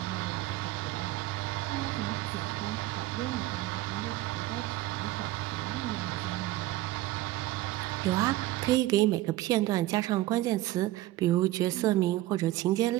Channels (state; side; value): quieter; left; 16.4 dB